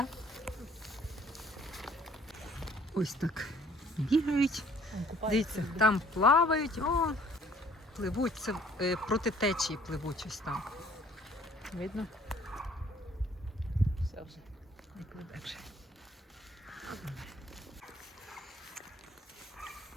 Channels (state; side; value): normal; both; correlation 0.58